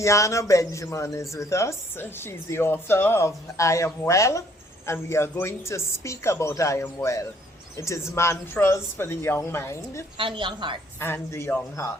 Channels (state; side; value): normal; both; correlation 0.63